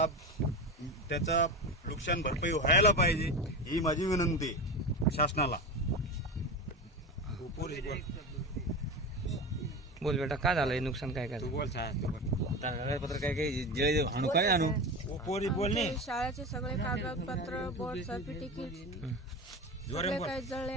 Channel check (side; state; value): both; normal; correlation 0.24